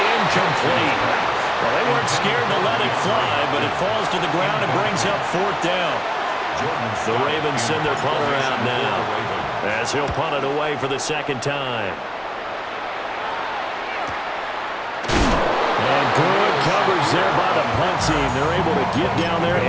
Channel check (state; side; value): identical; both; correlation 1.00